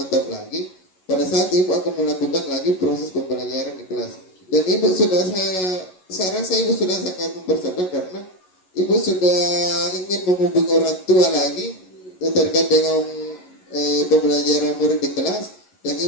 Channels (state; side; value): late; right; 11 ms